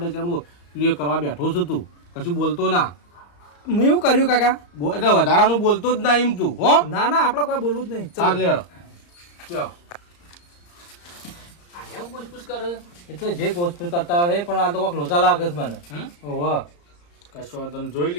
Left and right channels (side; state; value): right; late; 34 ms